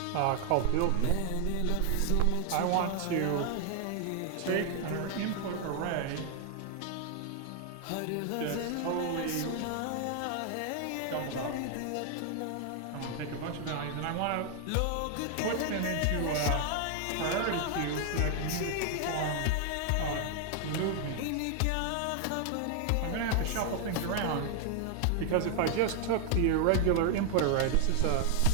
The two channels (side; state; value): both; different; correlation 0.00